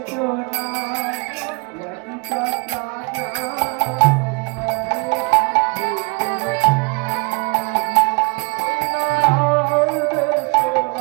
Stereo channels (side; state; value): left; quieter; 29.3 dB